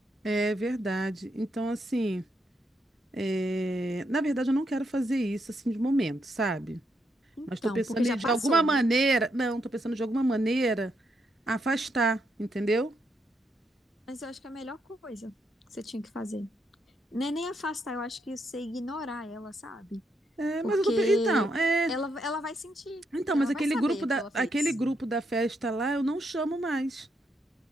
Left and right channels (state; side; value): normal; both; correlation 0.78